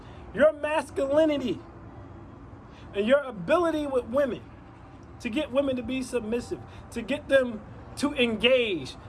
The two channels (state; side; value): identical; both; correlation 1.00